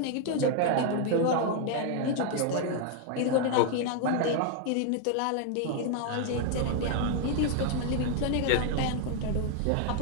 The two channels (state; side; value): different; both; correlation 0.00